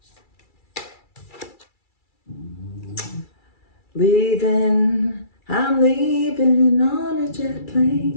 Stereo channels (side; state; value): right; late; 2.3 ms